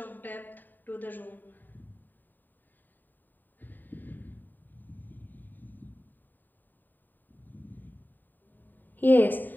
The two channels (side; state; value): right; late; 0.090 ms